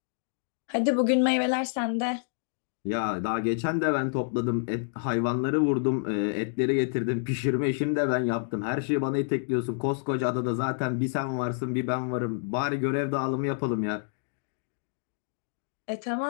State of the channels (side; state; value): right; silent; digital silence